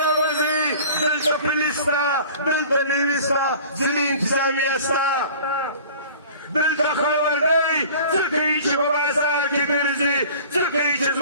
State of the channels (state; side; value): inverted; both; correlation -0.44